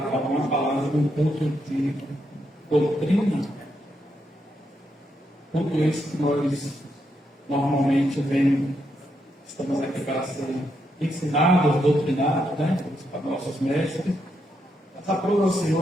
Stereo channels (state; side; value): normal; both; correlation 0.80